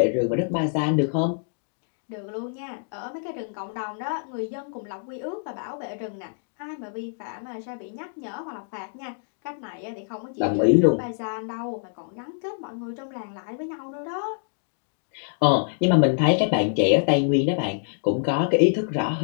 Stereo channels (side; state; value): right; silent; digital silence